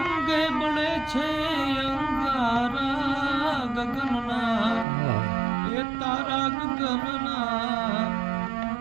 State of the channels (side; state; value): left; drops out; at 4.9 s